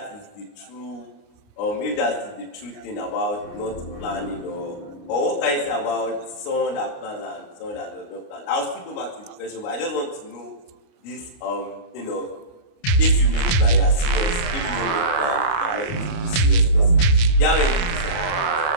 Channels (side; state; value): right; late; 28 ms